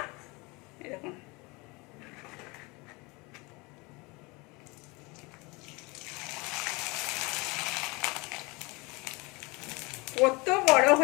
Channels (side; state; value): right; quieter; 26.1 dB